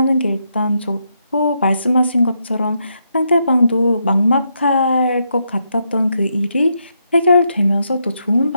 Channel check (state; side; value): inverted; both; correlation -0.80